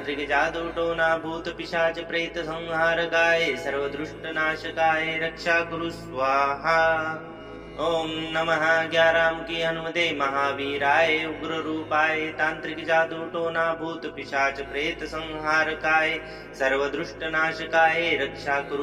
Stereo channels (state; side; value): identical; both; correlation 1.00